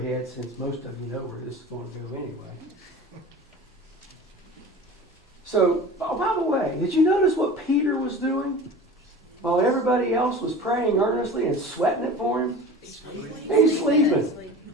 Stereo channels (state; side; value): normal; both; correlation 0.37